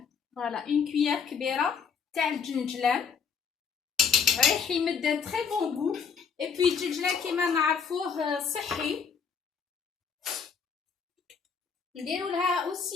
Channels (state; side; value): quieter; right; 6.3 dB